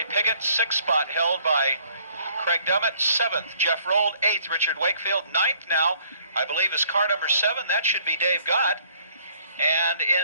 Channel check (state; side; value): inverted; both; correlation -0.61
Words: Piggott. 6th spot held by Craig Dummett. 7th, Jeff Roll. 8th, Richard Wakefield. 9th now, I believe, is car number 7. That should be Dave Gott. And